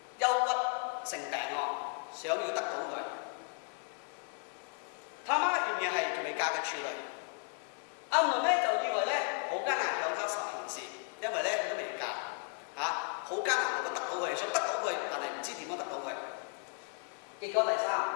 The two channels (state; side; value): quieter; right; 39.2 dB